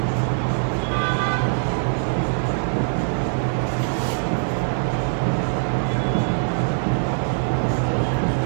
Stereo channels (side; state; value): left; silent; digital silence